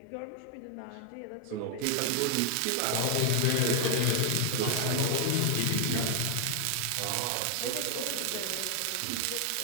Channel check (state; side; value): different; both; correlation 0.00